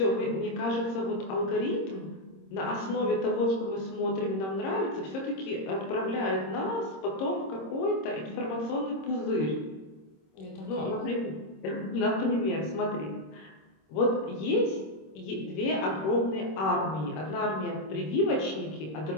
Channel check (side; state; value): right; late; 26 ms